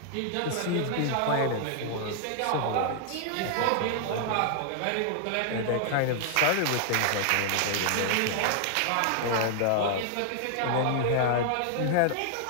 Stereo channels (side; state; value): both; different; correlation 0.00